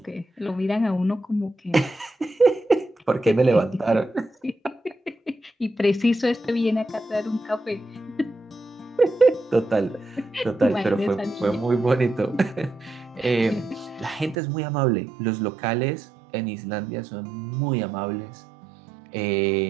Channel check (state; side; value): drops out; left; at 14.4 s